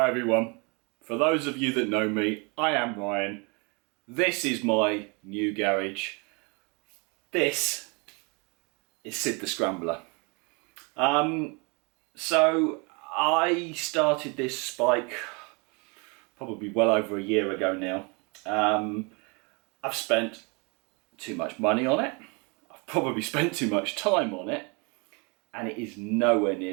everyone, for those of you that know me, I am Ryan. This is my new garage. This is Sid the Scrambler. So I started this bike probably well over a year ago now. I've spent too much money on it. I've probably spent too much time on it, and it is nowhere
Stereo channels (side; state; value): left; quieter; 31.2 dB